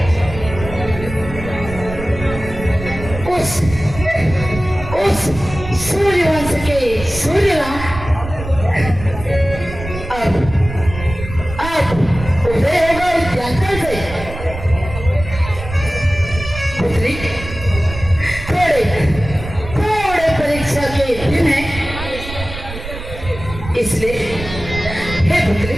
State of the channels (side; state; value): right; noise; rumble, 10 dB below the sound